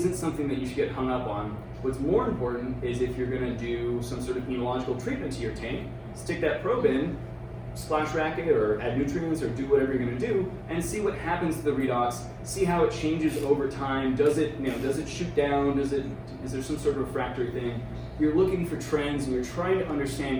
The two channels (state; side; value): identical; both; correlation 1.00